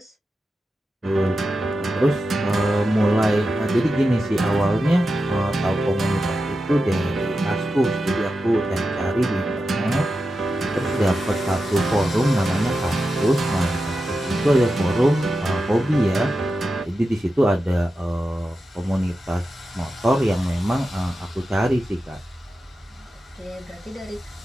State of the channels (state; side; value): normal; both; correlation 0.90